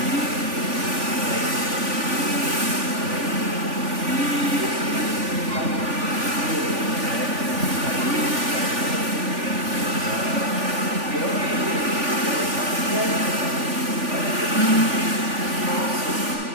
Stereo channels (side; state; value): left; late; 3.5 ms